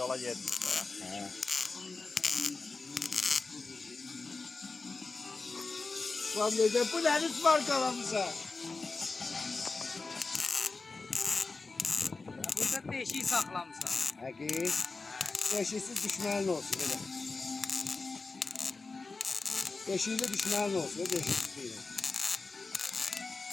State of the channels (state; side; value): quieter; right; 3.9 dB